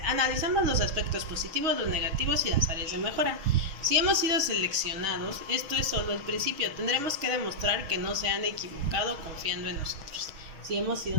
los aspectos positivos, los negativos y las áreas de mejora. Si hemos sido seleccionados, esto es solo el principio. Tendremos que demostrar que no se han equivocado confiando en nosotros. Si hemos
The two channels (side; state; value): left; late; 6.2 ms